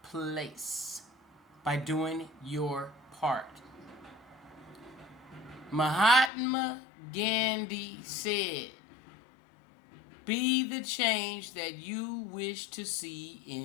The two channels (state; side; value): drops out; right; at 6.3 s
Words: Place by Doing Your Part. Mahatma Gandhi said, "Be the change that you wish to see